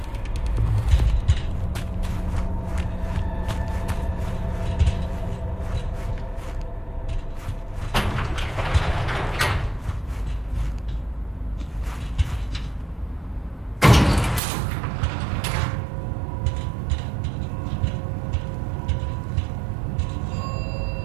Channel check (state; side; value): drops out; left; at 14.4 s